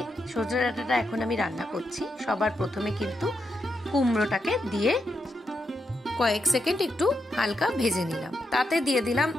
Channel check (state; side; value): normal; both; correlation 0.83